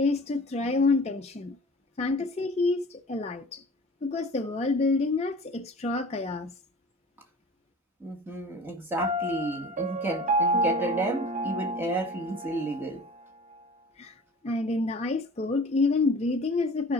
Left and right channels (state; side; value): normal; both; correlation 0.42